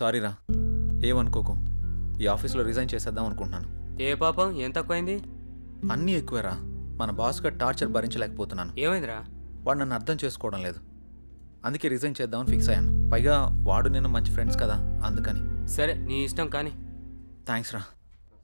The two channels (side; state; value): both; inverted; correlation -1.00